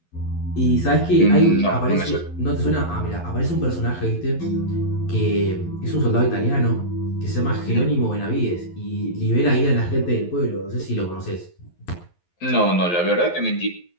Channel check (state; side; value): late; right; 11 ms